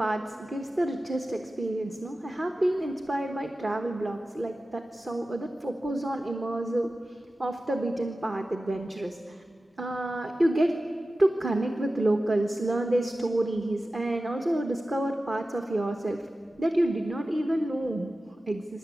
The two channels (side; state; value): both; normal; correlation 0.94